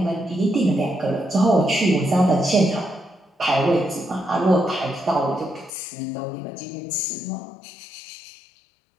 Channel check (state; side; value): drops out; right; at 5.7 s